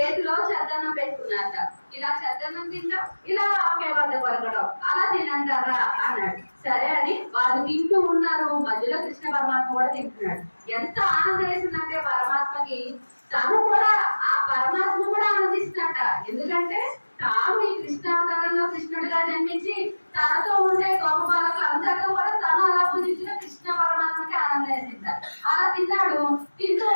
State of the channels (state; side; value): inverted; both; correlation -1.00